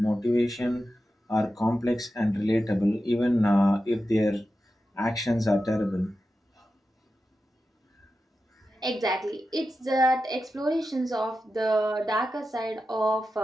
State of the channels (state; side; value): normal; both; correlation 0.91